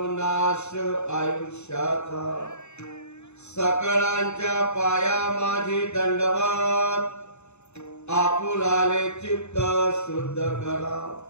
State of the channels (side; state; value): right; late; 0.82 ms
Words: नाश आयुष्याचा सकळांच्या पाया माझी दंडवत आपुलाले चित्त शुद्ध करा